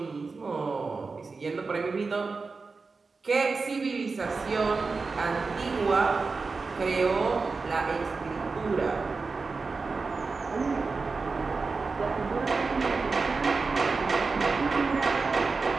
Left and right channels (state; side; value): quieter; left; 4.3 dB